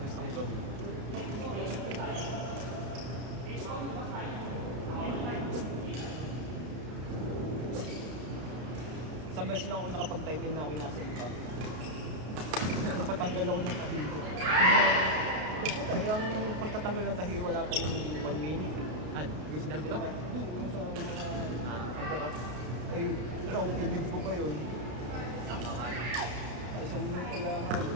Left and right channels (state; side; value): late; left; 32 ms